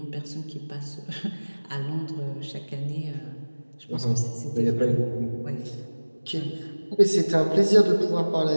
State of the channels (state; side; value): inverted; both; correlation -1.00